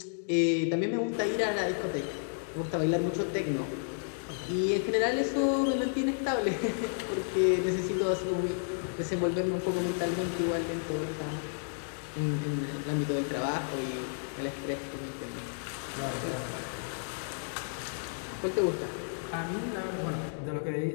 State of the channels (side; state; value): right; silent; digital silence